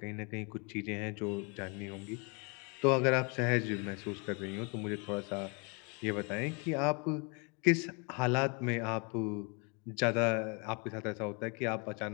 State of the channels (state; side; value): quieter; right; 33.4 dB